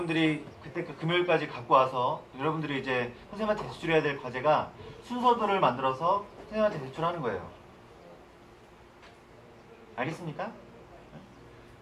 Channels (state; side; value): identical; both; correlation 1.00